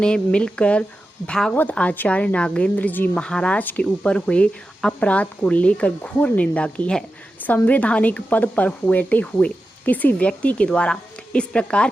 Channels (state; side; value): normal; both; correlation 0.92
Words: मिलकर भागवत आचार्य नागेंद्र जी महाराज के ऊपर हुए अपराध को लेकर घोर निंदा की है। संवैधानिक पद पर बैठे हुए किसी व्यक्ति के द्वारा इस प्रकार